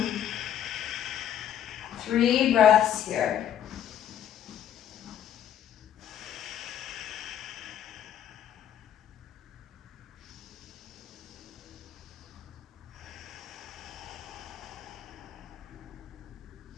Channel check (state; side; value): quieter; right; 10.0 dB